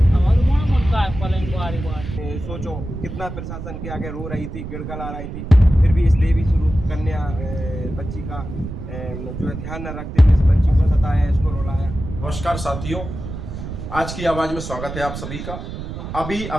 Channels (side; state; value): right; noise; rumble, 8 dB below the sound